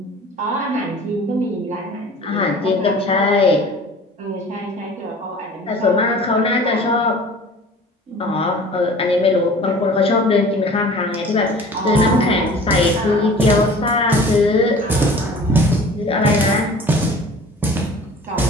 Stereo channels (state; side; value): normal; both; correlation 0.44